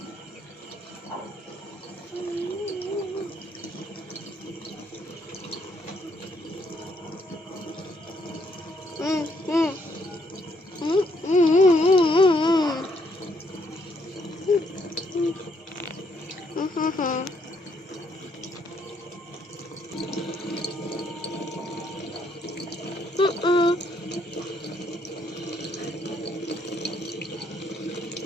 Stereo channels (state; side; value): normal; both; correlation 0.71